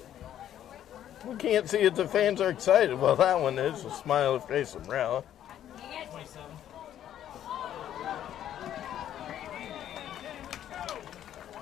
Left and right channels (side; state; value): right; quieter; 11.0 dB